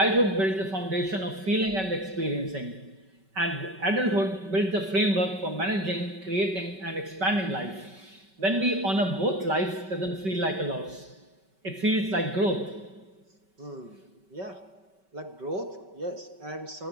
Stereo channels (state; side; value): late; left; 5.3 ms